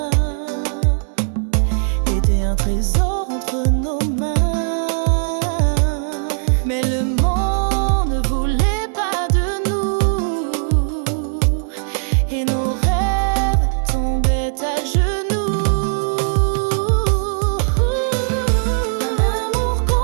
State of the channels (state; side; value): silent; left; digital silence